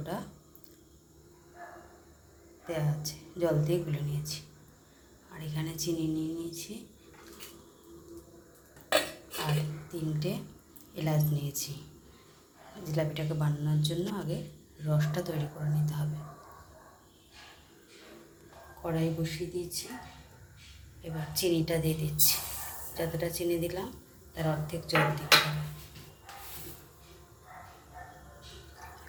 দেওয়া আছে, জল দিয়ে গুলে নিয়েছি। আর এখানে চিনি নিয়ে নিয়েছি আর 3টে এলাচ নিয়েছি। জিলাপিটাকে বানানোর জন্য আগে রসটা তৈরি করে নিতে হবে। কড়াই বসিয়ে দিয়েছি, এবার চিনিটা দিয়ে দিচ্ছি। যতটা চিনি দিলাম তার অর্ধেক জল দিতে হবে।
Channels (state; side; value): identical; both; correlation 1.00